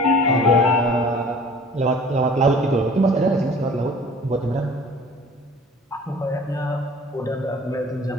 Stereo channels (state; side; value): normal; both; correlation 0.46